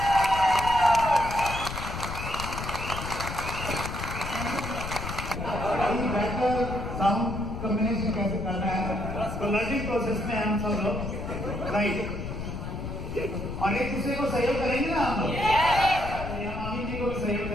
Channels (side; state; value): left; noise; rumble, 6 dB below the sound